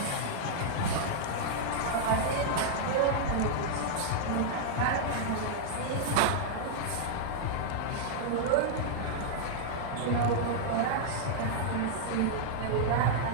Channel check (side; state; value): both; different; correlation -0.01